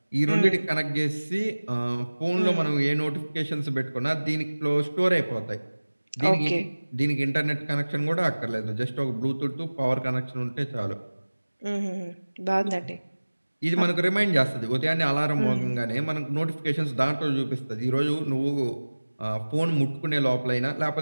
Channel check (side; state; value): both; inverted; correlation -1.00